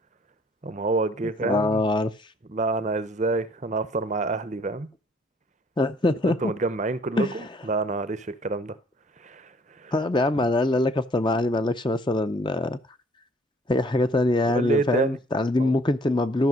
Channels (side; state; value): both; normal; correlation 0.59